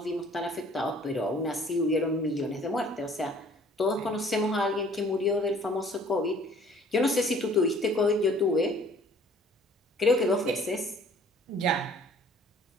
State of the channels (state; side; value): normal; both; correlation 0.55